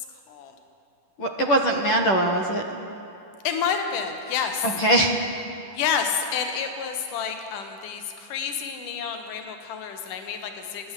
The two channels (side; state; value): right; late; 10 ms